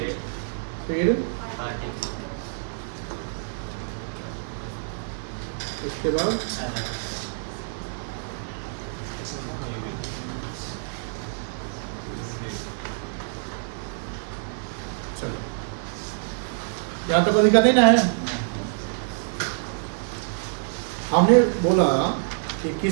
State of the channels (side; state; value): left; silent; 61 dB below the other